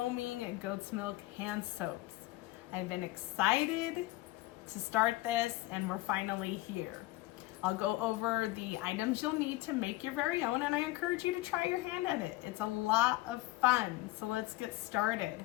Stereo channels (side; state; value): right; quieter; 18.6 dB